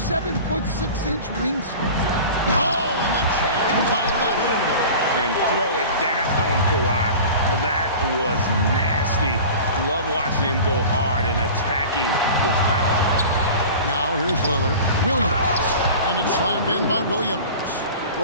wingspan. Oh, and the jam by Leonard. And throw it down, Kawhi. That was nasty. Love watching him go hard and attacking with power. Now here's Lillard. Williams. And it's slammed in by Williams.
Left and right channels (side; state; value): both; inverted; correlation -0.37